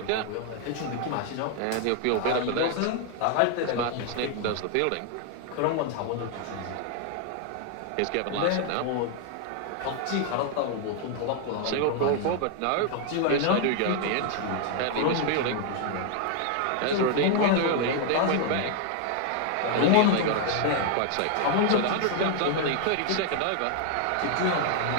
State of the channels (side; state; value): both; different; correlation 0.00